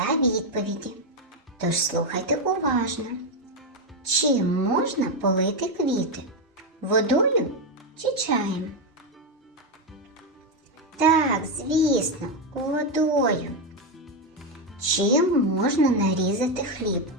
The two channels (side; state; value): both; normal; correlation 0.06